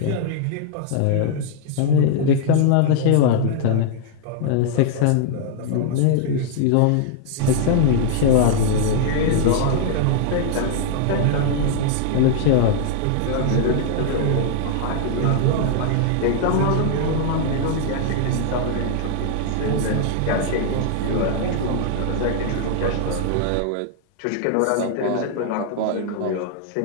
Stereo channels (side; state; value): both; different; correlation 0.00